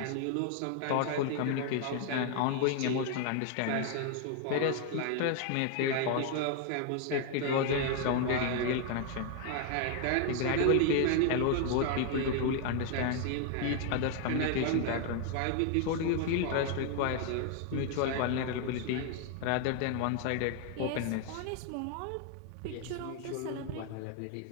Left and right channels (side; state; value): both; different; correlation 0.00